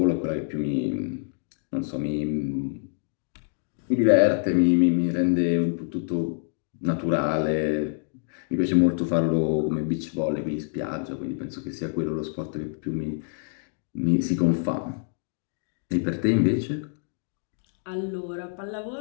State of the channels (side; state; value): right; silent; digital silence